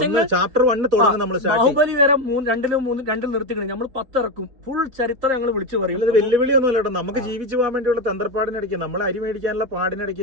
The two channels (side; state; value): left; late; 4.1 ms